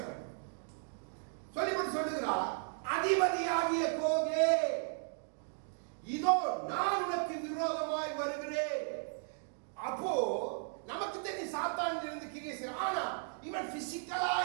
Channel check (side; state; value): left; silent; 54 dB below the other